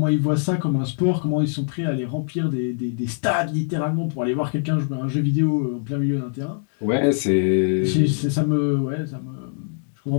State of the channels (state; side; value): silent; right; digital silence